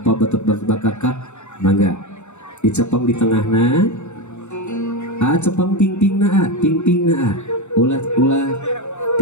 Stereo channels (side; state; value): right; late; 0.83 ms